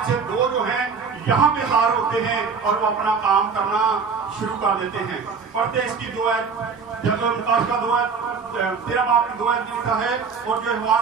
से 2 जो हैं यहाँ पे ज़ाहिर होते हैं और वो अपना काम करना शुरू कर देते हैं। पढ़ते हैं इसकी 2 आयत, जब मुकाशवा 2 आयत 13 बाब में 2 आयत में लिखा है, और जो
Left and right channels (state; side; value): quieter; left; 5.5 dB